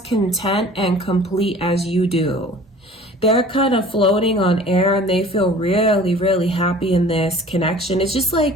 and complete as you do. They're kind of floating on air and they feel really, really happy in this connection. It's just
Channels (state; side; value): normal; both; correlation 0.46